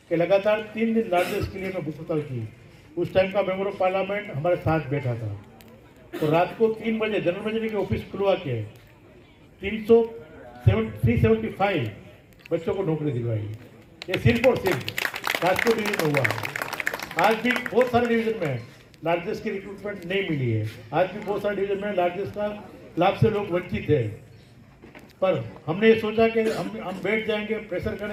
कि लगातार 3 दिन लार्जेस्ट के लिए मैं बुक हड़ताल की। उस टाइम का मेंबर ऑफ पार्लियामेंट हमारे साथ बैठा था। तो रात को 3 बजे जनरल मैनेजर के ऑफिस खुलवा के 375 बच्चों को नौकरी दिलवाई। ये सिर्फ और सिर्फ राजकोट डिवीजन में हुआ। आज भी बहुत सारे डिवीजन में लार्जेस्ट की रिक्रूटमेंट नहीं मिली है। आज भी बहुत सारे डिवीजन में लार्जेस्ट का लाभ से लोग वंचित है। पर हमने ये सोचा कि हम बैठ जाएंगे, प्रेशर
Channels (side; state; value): both; identical; correlation 1.00